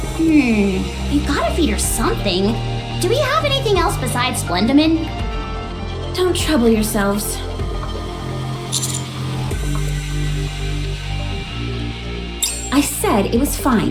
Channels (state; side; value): identical; both; correlation 1.00